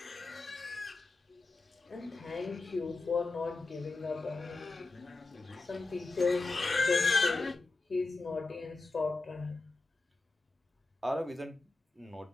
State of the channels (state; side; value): quieter; right; 3.5 dB